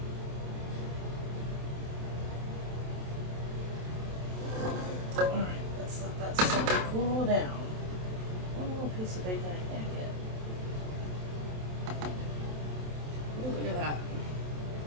Alright, let's let that sun cool down. One little piece of bacon I can't get. Ooh, look at that.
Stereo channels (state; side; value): late; left; 27 ms